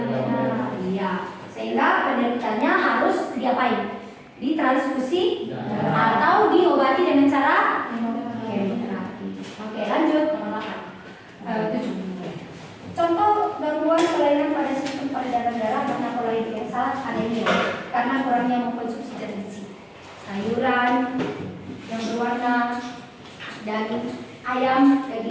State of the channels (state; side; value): identical; both; correlation 1.00